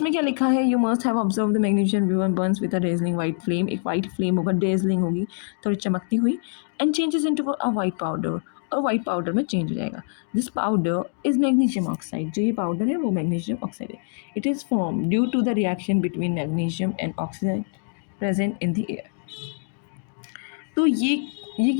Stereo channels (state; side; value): silent; right; digital silence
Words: क्या लिखा है, you must have observe the magnesium ribbon burns with a dazzling white flame. एक white flame होगा, dazzling होगी, थोड़ी चमकती हुई, and changes into a white powder, और वाइट पाउडर में चेंज हो जाएगा। This powder is magnesium oxide, जो ये पाउडर है वो मैग्नीशियम ऑक्साइड है। It is form due to the reaction between magnesium and oxygen present in the air. तो ये